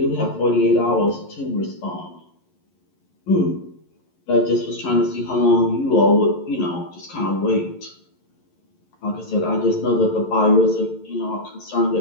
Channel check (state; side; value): late; right; 11 ms